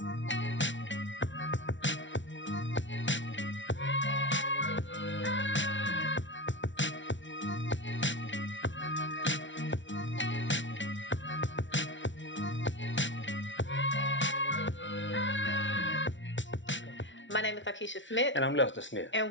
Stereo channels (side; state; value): right; late; 0.55 ms